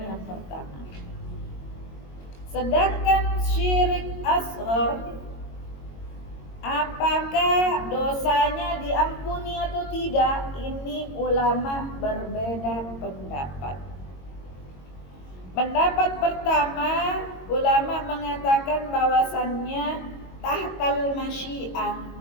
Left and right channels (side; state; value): right; late; 22 ms